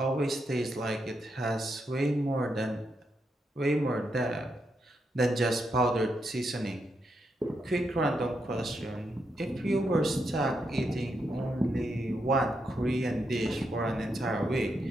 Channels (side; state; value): both; normal; correlation 0.82